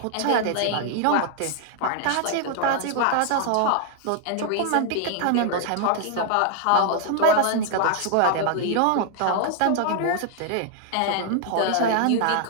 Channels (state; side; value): different; both; correlation 0.00